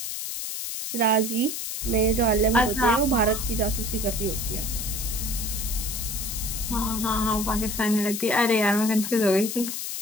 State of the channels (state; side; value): noise; left; hiss, 5 dB below the sound